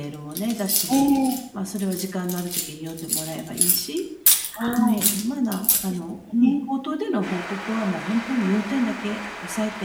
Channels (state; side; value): identical; both; correlation 1.00